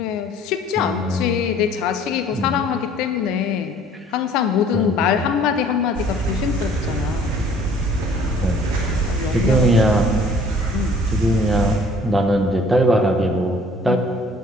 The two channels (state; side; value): normal; both; correlation 0.54